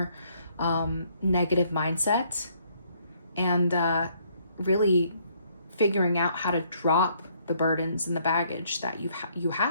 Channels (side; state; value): both; inverted; correlation -0.67